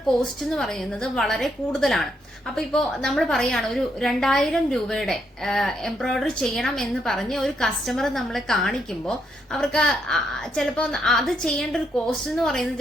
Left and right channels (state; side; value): normal; both; correlation 0.77